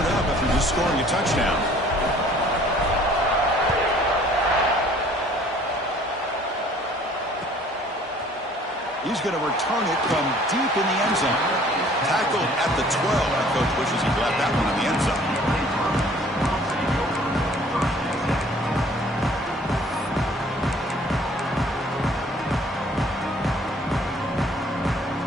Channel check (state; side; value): normal; both; correlation 0.55